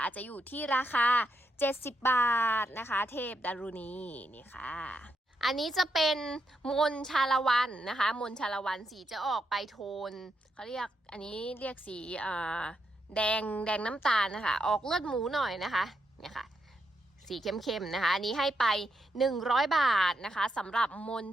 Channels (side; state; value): both; normal; correlation 0.81